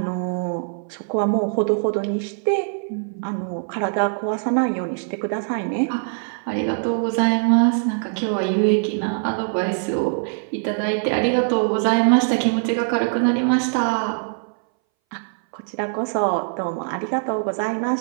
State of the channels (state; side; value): silent; left; 61 dB below the other